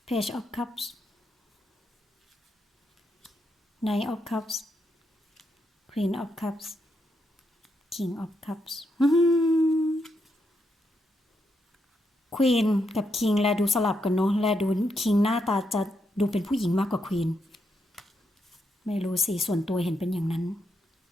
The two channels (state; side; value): normal; both; correlation 0.81